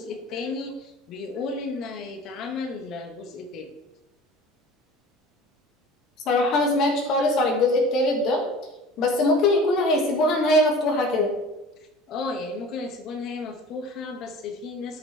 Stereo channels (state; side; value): normal; both; correlation 0.42